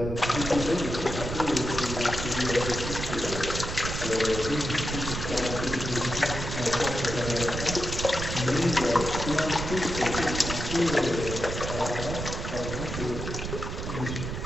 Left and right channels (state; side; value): noise; right; rumble, 5 dB below the sound